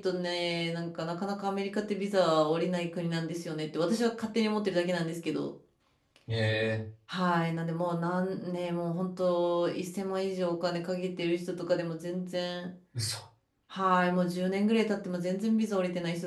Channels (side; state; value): both; identical; correlation 1.00